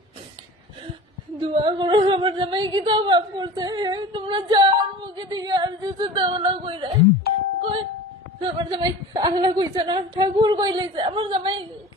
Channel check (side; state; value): both; normal; correlation 0.38